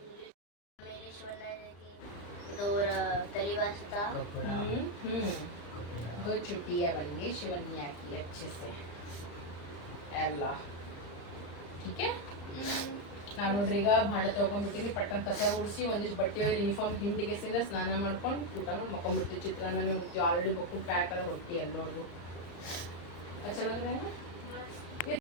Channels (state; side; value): late; right; 35 ms